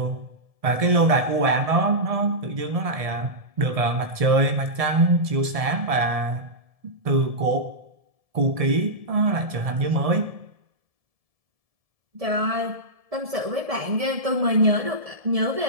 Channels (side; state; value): left; late; 1.7 ms